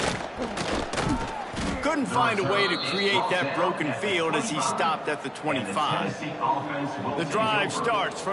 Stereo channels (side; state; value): both; identical; correlation 1.00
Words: Couldn't find a way to create that broken field as he stopped at the 25. The drive starts